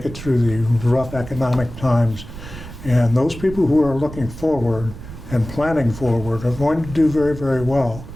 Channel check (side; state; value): right; noise; rumble, 13 dB below the sound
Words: it through the rough economic times. And those people who are looking forward and planning forward are going to do very, very well.